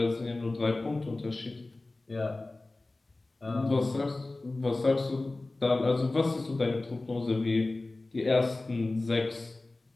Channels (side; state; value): right; quieter; 3.0 dB